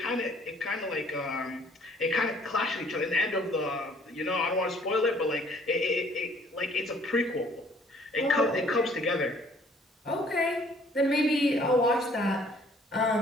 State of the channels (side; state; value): both; normal; correlation 0.58